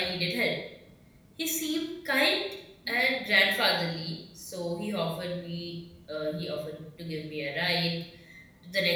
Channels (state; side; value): identical; both; correlation 1.00